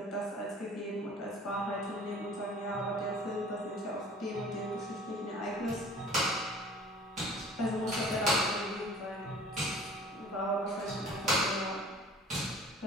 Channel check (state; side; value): normal; both; correlation 0.48